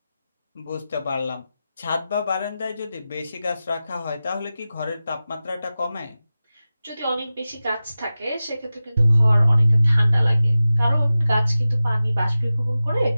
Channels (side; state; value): both; inverted; correlation -0.95